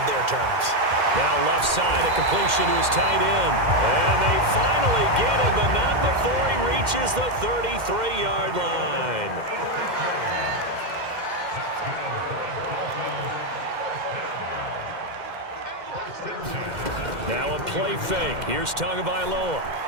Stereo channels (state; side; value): late; left; 2.1 ms